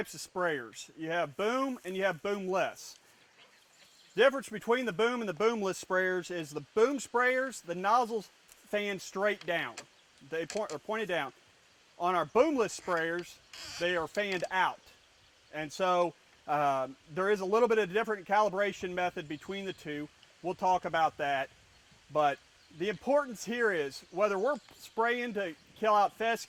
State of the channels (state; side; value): identical; both; correlation 1.00